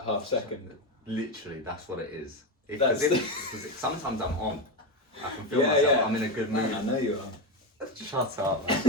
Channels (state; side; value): normal; both; correlation 0.14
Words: half second. Literally, that's what it is. That's Sometimes I'm on. I can feel myself. I'm in a good mood. Man, I know you are. Shut up, man.